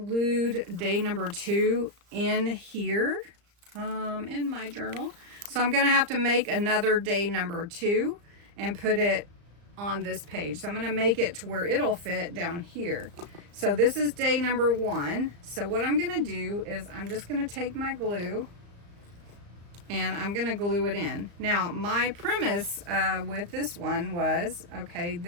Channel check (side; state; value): left; late; 35 ms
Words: day number 2 in here in my journal. So I'm going to have to make another day number 2 and put it on this page. So I'm going to make it to where it'll fit down here. So this is day number 1. So what I'm going to do is I'm just going to take my glue and I'm going to glue it in. Now, my premise with this one was, okay,